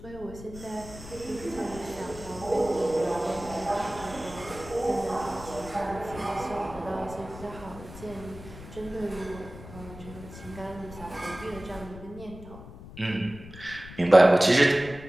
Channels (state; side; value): noise; left; rumble, 15 dB below the sound